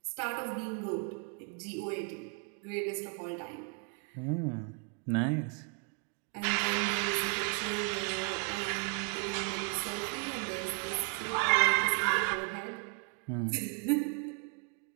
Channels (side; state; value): left; quieter; 39.3 dB